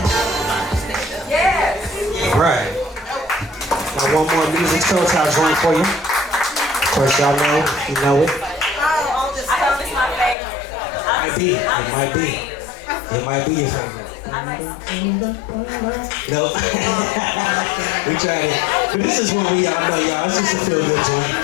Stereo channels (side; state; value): right; drops out; at 10.4 s